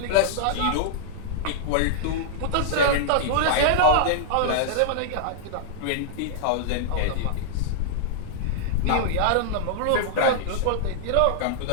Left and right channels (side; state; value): both; different; correlation -0.02